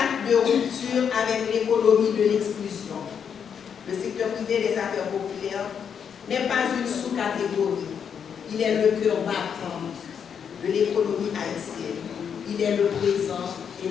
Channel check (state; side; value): quieter; right; 7.4 dB